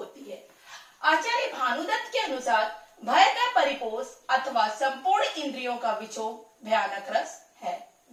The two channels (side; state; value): both; identical; correlation 1.00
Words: है। आचार्य भानुदत्त के अनुसार भय का परिपोष अथवा संपूर्ण इंद्रियों का विक्षोभ भयानक रस है।